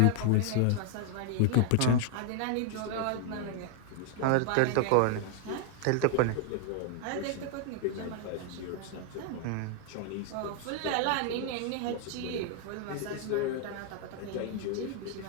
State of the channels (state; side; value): different; both; correlation 0.00